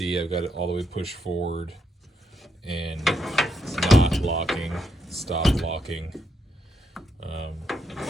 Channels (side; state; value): both; normal; correlation 0.79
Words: I've got it all the way pushed forward and it's not locking, stop locking.